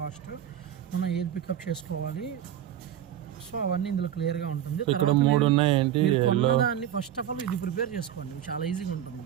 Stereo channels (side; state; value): left; quieter; 10.7 dB